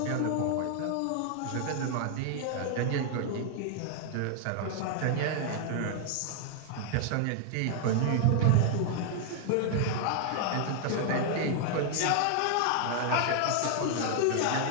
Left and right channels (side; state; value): both; different; correlation 0.00